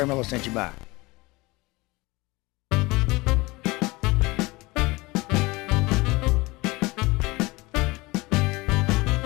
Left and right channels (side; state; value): right; quieter; 22.8 dB